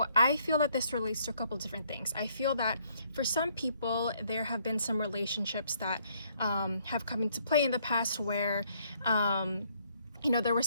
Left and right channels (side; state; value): both; inverted; correlation -0.67